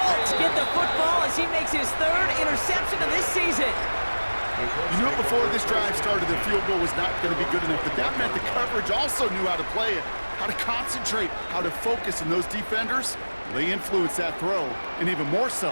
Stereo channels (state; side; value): inverted; both; correlation -1.00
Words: get the football as he makes his 3rd interception of this season. You knew before this drive started the field goal was not going to be good enough, but that meant the coverage also knew how to play it, how to concentrate, how to focus, and those defenders, they influenced that throw, and even more so,